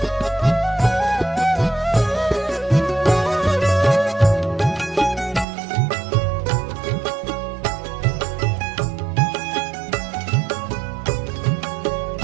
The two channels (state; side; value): drops out; left; at 5.5 s